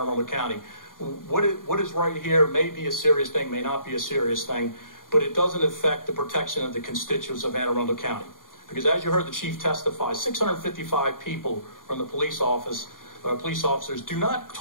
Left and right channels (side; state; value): right; late; 0.90 ms